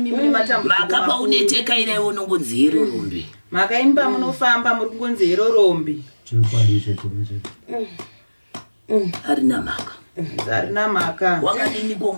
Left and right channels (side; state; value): both; inverted; correlation -1.00